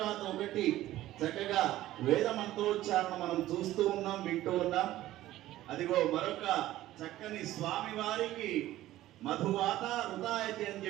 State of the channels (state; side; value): quieter; left; 14.9 dB